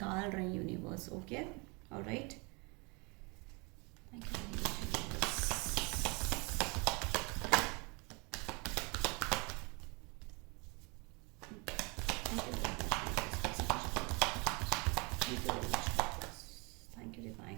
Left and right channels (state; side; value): quieter; left; 29.9 dB